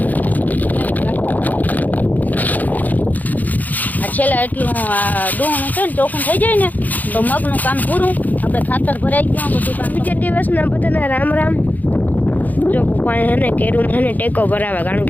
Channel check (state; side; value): late; right; 0.081 ms